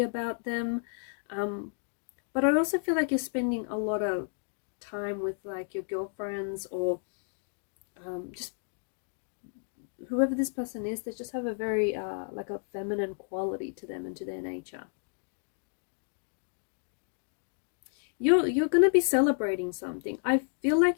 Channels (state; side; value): silent; right; 57 dB below the other